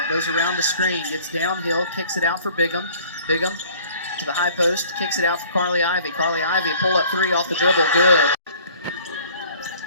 goes around the screen, gets downhill, kicks it out for Bigham. Bigham to the high post, kicks it out for Carly Ivy. Carly Ivy, pull up three off the dribble, good.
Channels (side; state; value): both; inverted; correlation -0.52